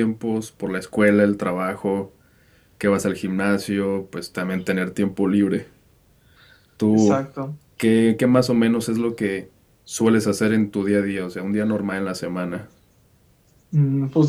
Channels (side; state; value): both; identical; correlation 1.00